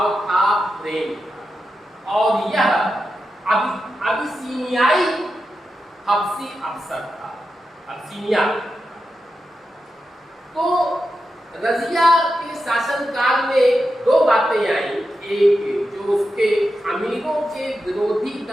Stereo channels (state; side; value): normal; both; correlation 0.89